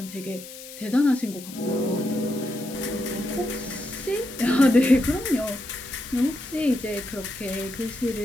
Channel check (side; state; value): left; noise; hiss, 14 dB below the sound